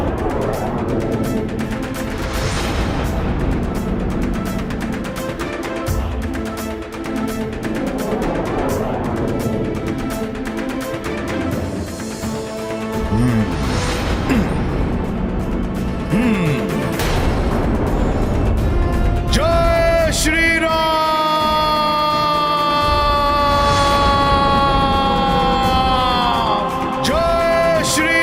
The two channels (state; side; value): identical; both; correlation 1.00